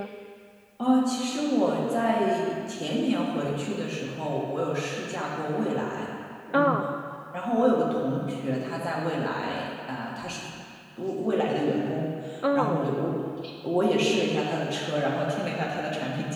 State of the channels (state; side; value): identical; both; correlation 1.00